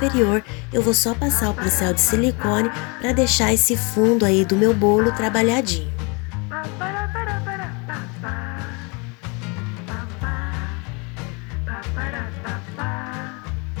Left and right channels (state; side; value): quieter; right; 30.8 dB